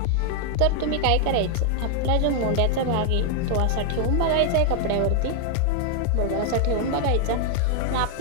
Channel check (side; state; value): both; different; correlation 0.00